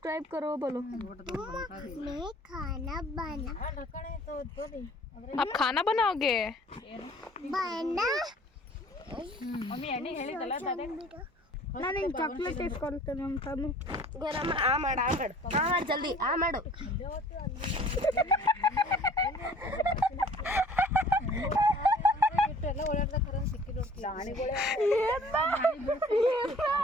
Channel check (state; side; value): normal; both; correlation 0.51